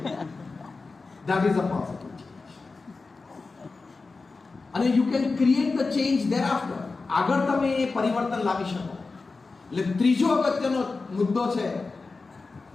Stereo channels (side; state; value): right; quieter; 4.0 dB